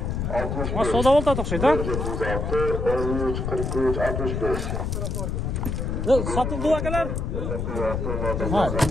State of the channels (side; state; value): left; noise; rumble, 2 dB below the sound